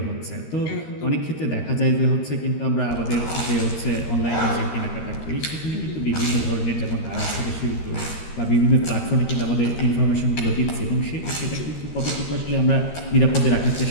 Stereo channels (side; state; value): right; late; 13 ms